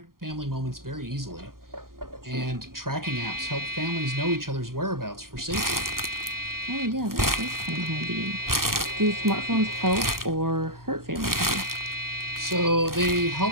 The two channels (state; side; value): late; left; 0.92 ms